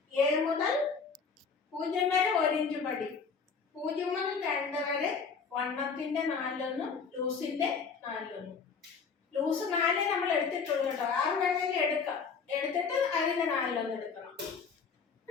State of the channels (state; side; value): quieter; right; 5.5 dB